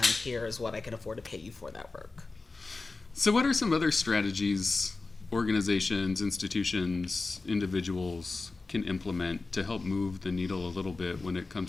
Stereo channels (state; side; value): quieter; right; 3.7 dB